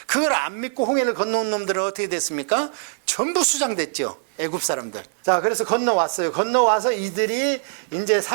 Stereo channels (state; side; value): silent; left; 64 dB below the other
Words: 그걸 안 믿고 홍해를 건너온 놈들은 어떻게 됐습니까? 전부 수장됐죠. 애굽 사람들. 자, 그래서 건너왔어요. 건너와서 이들이 이제